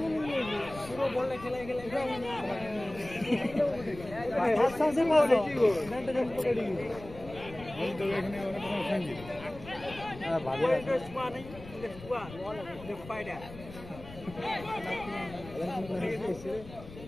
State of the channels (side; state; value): left; noise; rumble, 16 dB below the sound